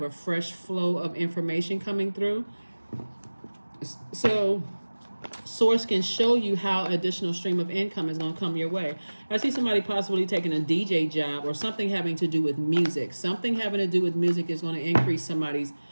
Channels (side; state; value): both; inverted; correlation -1.00